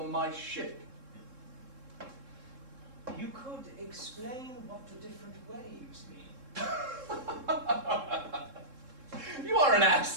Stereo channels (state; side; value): late; left; 3.7 ms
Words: my ship. You could explain what the different waves mean. You are an